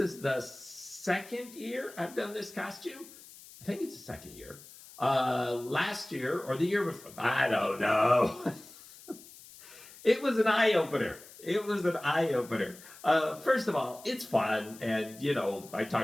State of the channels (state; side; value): noise; left; hiss, 19 dB below the sound